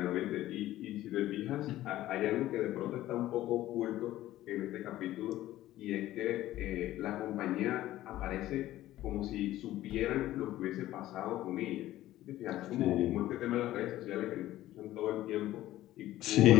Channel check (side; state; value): right; quieter; 14.8 dB